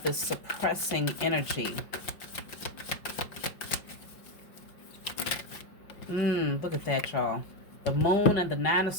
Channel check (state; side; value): late; right; 5.4 ms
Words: this suppressing energy. Look at that, y'all. The moon and the 9 of